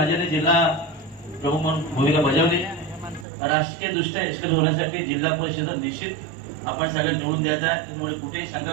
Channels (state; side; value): drops out; left; at 3.2 s